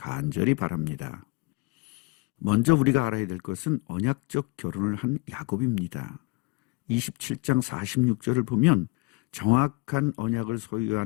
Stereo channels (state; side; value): quieter; right; 26.6 dB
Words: 바랍니다. 먼저 우리가 알아야 될 것은 언약적 결혼을 한 야곱입니다. 27장 46절을 보면 정확한 언약을